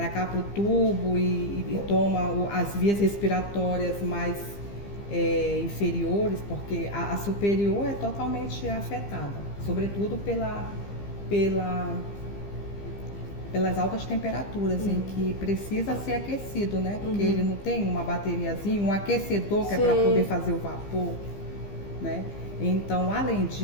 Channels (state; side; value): late; right; 15 ms